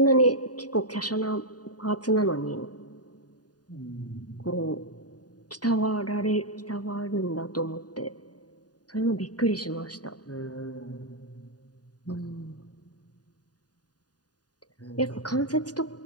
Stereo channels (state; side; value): late; right; 0.68 ms